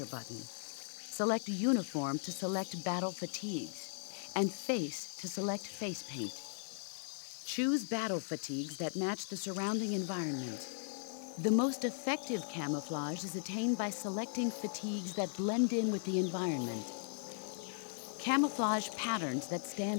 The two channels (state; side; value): silent; right; digital silence